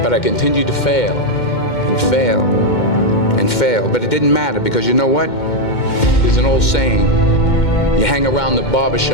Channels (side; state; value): right; late; 2.1 ms